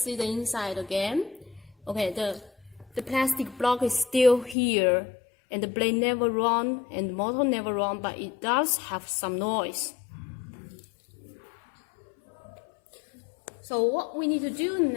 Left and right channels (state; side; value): drops out; right; at 4.5 s